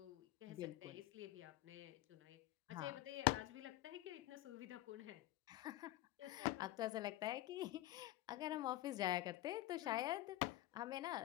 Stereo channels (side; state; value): right; quieter; 16.2 dB